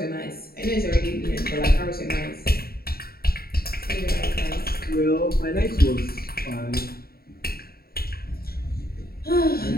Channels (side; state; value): right; late; 0.44 ms